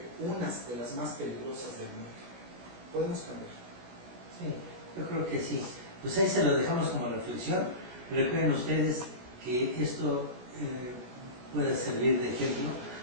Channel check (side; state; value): left; late; 16 ms